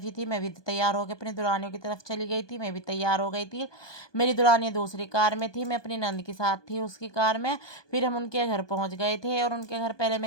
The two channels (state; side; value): late; right; 1.2 ms